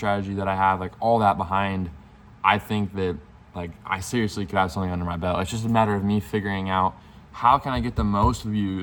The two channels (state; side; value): identical; both; correlation 1.00